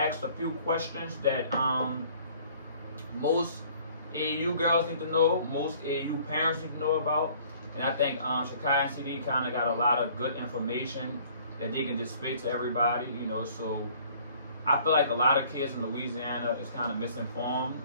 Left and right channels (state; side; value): inverted; both; correlation -0.55